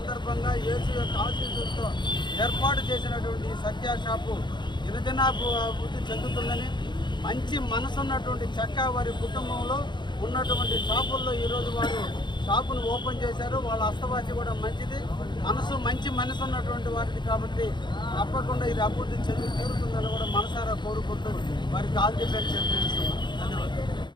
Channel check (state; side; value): late; right; 0.22 ms